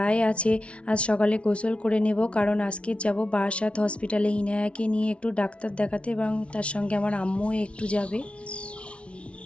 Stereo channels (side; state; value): right; late; 0.061 ms